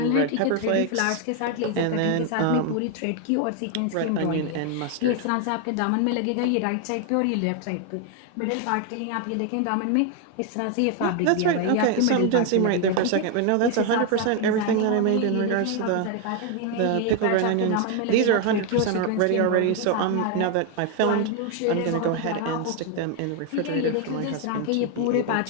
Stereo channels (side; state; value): both; different; correlation 0.01